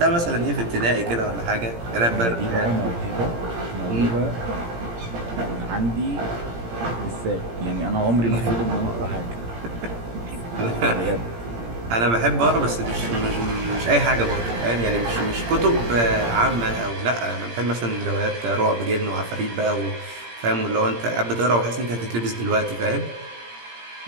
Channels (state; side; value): late; left; 17 ms